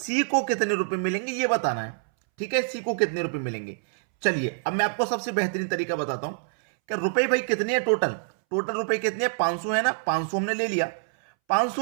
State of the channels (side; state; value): left; silent; 61 dB below the other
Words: को कितने रुपए मिलेंगे ये बताना है। ठीक है, सी को कितने रुपए मिलेंगे। चलिए अब मैं आपको सबसे बेहतरीन तरीका बताता हूं कि रुपए भाई कितने हैं। टोटल रुपए कितने हैं? 500 है ना। 500 हमने ले लिया।